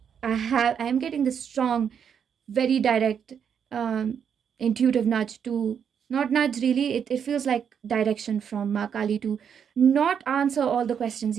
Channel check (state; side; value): quieter; left; 7.7 dB